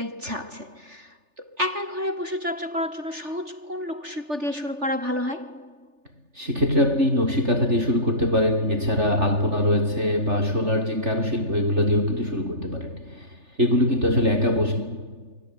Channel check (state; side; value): late; left; 3.4 ms